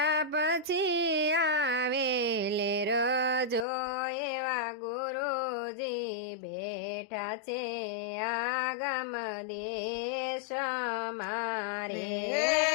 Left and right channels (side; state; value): right; drops out; at 3.7 s